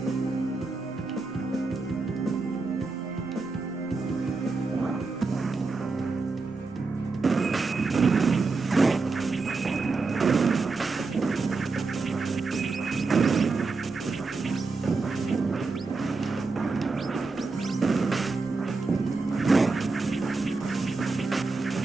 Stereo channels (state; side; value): quieter; left; 4.0 dB